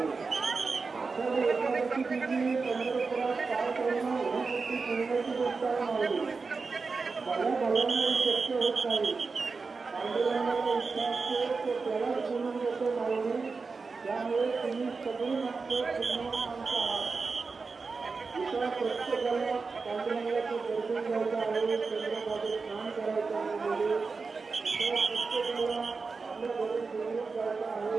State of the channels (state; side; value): quieter; left; 4.5 dB